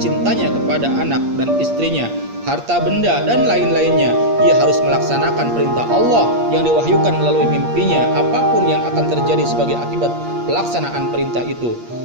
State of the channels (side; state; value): left; late; 8.5 ms